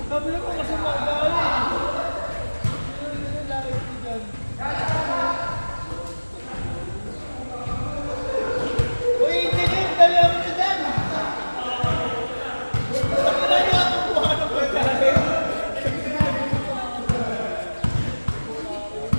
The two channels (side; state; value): both; inverted; correlation -1.00